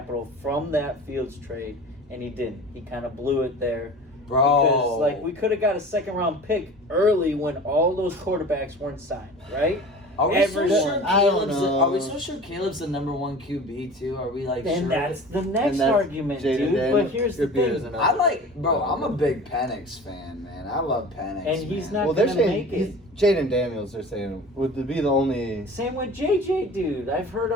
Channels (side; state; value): both; normal; correlation 0.39